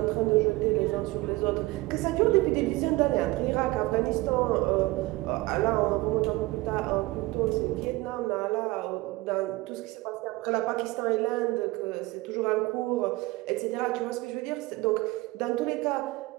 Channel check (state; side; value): quieter; left; 20.9 dB